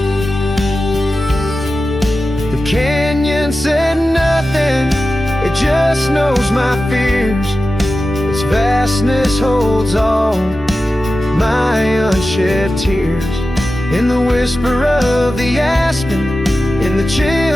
The canyon said nothing, it just knows my fears. Its vastness holds all my unshed tears. In the whisper of the aspen, in the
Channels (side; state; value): both; normal; correlation 0.93